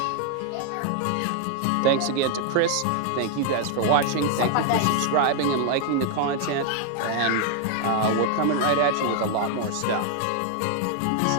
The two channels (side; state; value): both; different; correlation 0.00